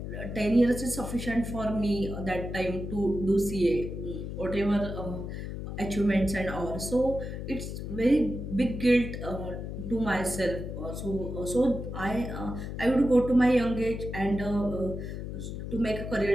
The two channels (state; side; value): noise; left; hum, 6 dB below the sound